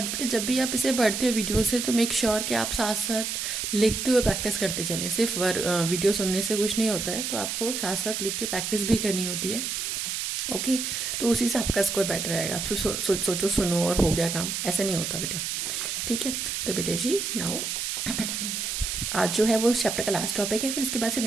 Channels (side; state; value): right; noise; hiss, 2 dB below the sound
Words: बेटा जब भी आप इसे पढ़ते हो वीडियो से तो मेक श्योर कि आप साथ साथ लिखते हुए प्रैक्टिस करते चलें। सिर्फ वीडियो सुनने से कुछ नहीं होता है, तो आपको साथ साथ लिख के प्रैक्टिस भी करनी होती है। ओके, तो उसी से आपका स्कोर बेटर रहेगा। आप सोचो सुनो और हो गया काम, ऐसा नहीं होता बेटा, ठीक है। तो बेटा जी नाउ आज जो है वो चैप्टर का लास्ट टॉपिक है, फिर इसके बाद से